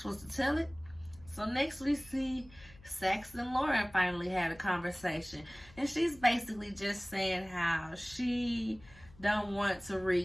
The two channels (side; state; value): left; noise; hum, 23 dB below the sound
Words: was to tell it. So next we see Sax and Lauren finally had a conversation. And she's basically just saying how she don't want